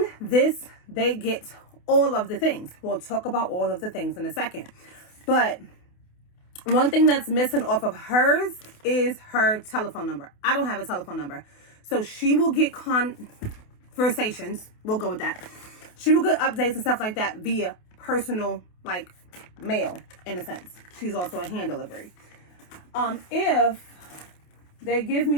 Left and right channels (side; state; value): right; late; 28 ms